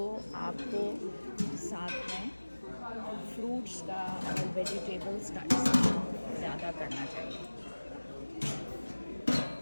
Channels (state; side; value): inverted; both; correlation -1.00